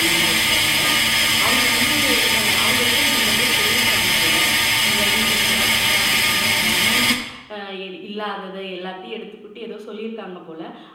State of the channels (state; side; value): identical; both; correlation 1.00